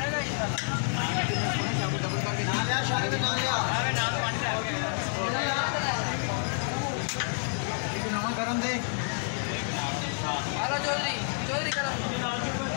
इंशाल्लाह डबल करके ना लिया शादी में ना लिया अरे नाम पानी दे एक नाम गरम दे हेलो चौधरी गरम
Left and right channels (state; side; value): silent; right; digital silence